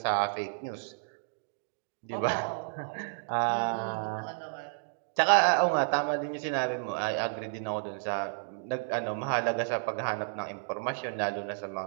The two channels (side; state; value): left; silent; digital silence